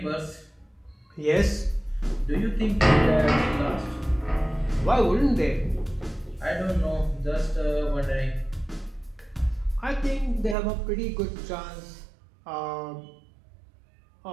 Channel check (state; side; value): drops out; left; at 10.6 s